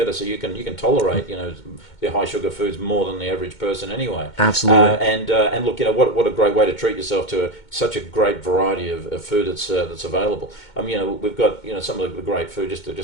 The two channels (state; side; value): late; right; 2.2 ms